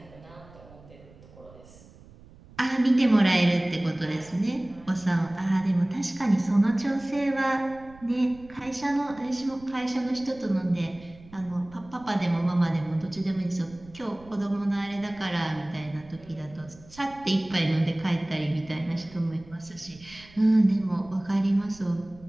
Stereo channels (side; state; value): right; noise; rumble, 22 dB below the sound